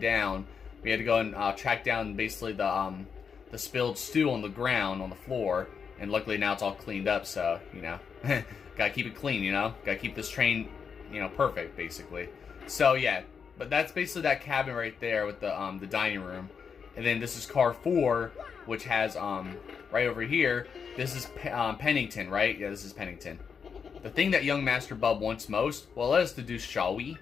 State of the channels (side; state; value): right; quieter; 6.3 dB